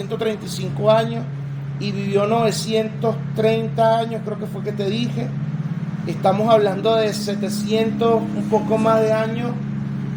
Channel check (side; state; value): both; identical; correlation 1.00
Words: años y vivió 930 años, creo que fue que te dije. Estamos hablando de 700, un poco más de años,